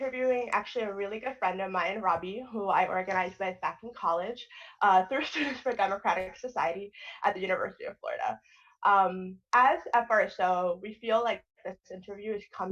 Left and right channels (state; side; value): identical; both; correlation 1.00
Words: actually a really good friend of mine, Robbie, who I organized with back in college through Students for Democratic Society at the University of Florida. As FRSO, we feel like this interview is